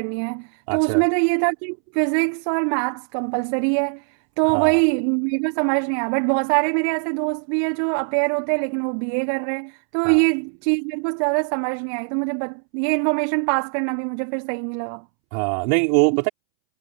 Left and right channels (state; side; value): silent; left; 65 dB below the other